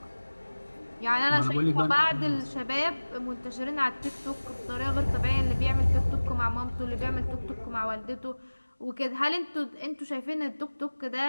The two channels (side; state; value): both; inverted; correlation -1.00